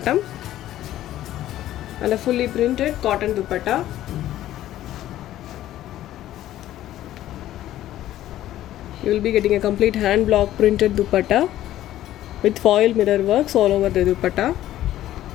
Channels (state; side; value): quieter; right; 13.4 dB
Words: and a fully printed cotton dupatta. You will be getting a complete hand block printed dupatta with foil mirror works all over the dupatta.